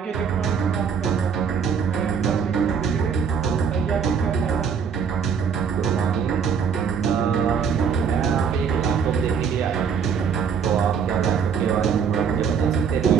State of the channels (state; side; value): quieter; left; 6.8 dB